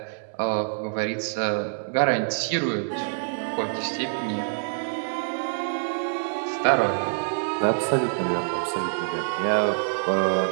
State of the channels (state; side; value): silent; left; 61 dB below the other